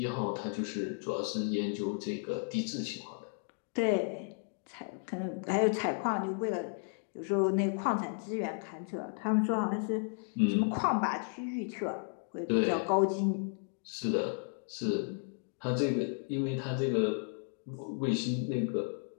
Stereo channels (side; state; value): right; silent; 55 dB below the other